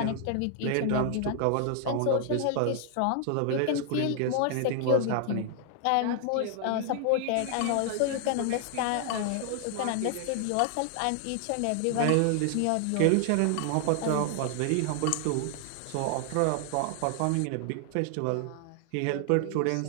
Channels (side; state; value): both; different; correlation 0.00